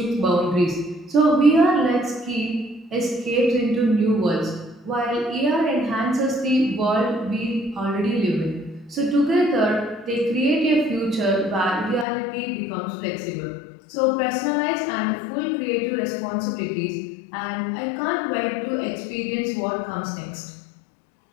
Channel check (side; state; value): right; drops out; at 12.1 s